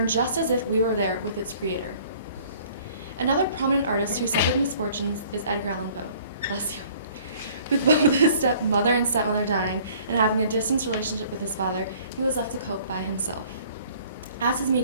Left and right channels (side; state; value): both; inverted; correlation -0.54